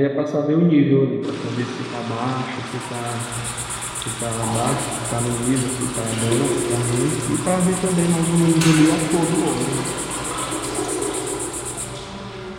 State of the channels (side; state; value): both; identical; correlation 1.00